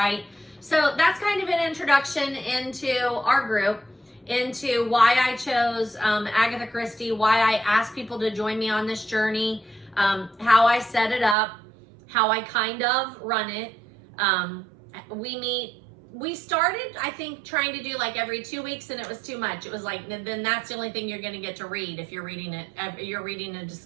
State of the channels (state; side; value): drops out; left; at 11.4 s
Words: So that's kind of an introduction into our group, into why I chose Agatha Christie, why I asked people to join me on this journey, how I set it up, how I kind of run it. We started, I think, trying to do like every 2 weeks, and it was too much. It was like, then that's the only thing you're going to get to read if you're reading it. You're reading and